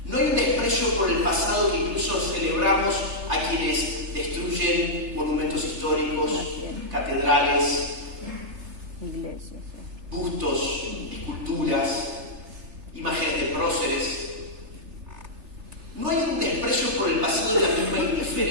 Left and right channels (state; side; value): late; left; 3.4 ms